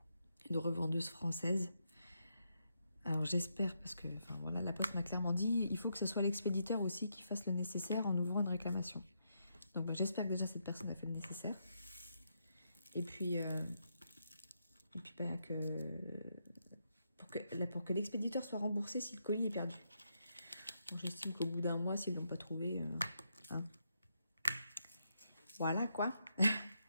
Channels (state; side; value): inverted; both; correlation -0.81